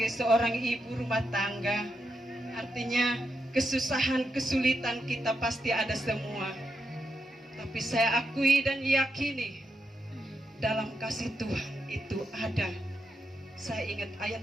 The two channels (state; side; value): normal; both; correlation 0.84